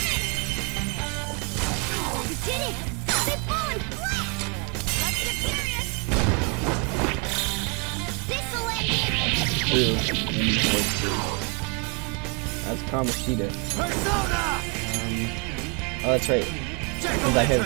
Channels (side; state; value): left; quieter; 34.2 dB